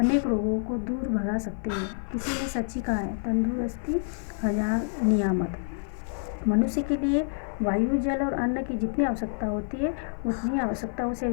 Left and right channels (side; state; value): right; silent; digital silence